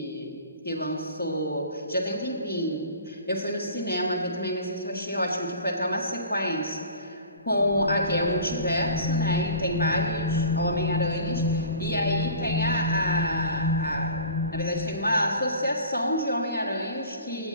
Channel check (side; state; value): both; inverted; correlation -0.43